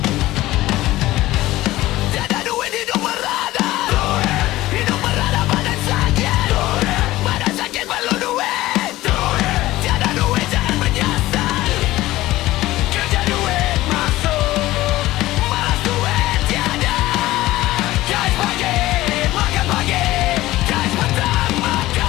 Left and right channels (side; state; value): right; quieter; 16.9 dB